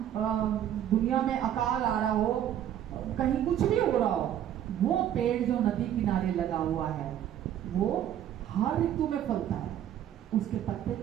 दुनिया में अकाल आ रहा हो, कहीं कुछ भी हो रहा हो, वो पेड़ जो नदी किनारे लगा हुआ है वो हर ऋतु में फलता है, उसके पत्ते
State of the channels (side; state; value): left; quieter; 10.7 dB